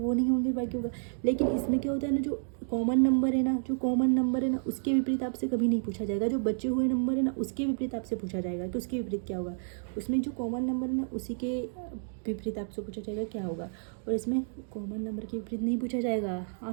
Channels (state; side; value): silent; left; digital silence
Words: नहीं होंगे, बाकी होगा। लेकिन इसमें क्या होता है ना, जो कॉमन नंबर है ना, उसके विपरीत आपसे कभी नहीं पूछा जाएगा। जो बचे हुए नंबर है ना, उसके विपरीत आपसे पूछा जाएगा कि उसके विपरीत क्या होगा। उसमें जो कॉमन नंबर है ना, उसी के विपरीत आपसे पूछा जाएगा क्या होगा। और इसमें कॉमन नंबर के विपरीत नहीं पूछा जाएगा।